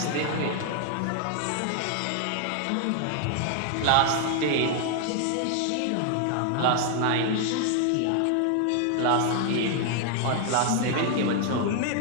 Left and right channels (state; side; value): different; both; correlation 0.00